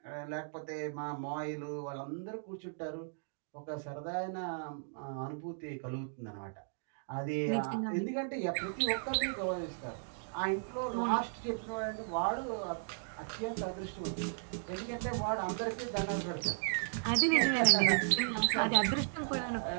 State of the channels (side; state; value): left; silent; digital silence